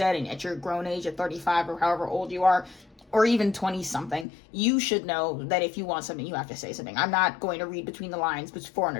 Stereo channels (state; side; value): drops out; right; at 4.2 s